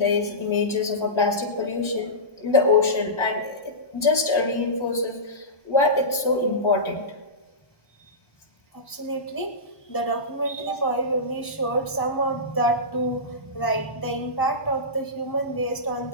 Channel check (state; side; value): late; right; 1.1 ms